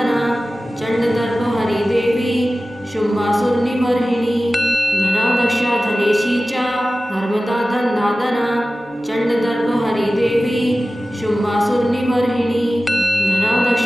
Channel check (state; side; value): normal; both; correlation 0.96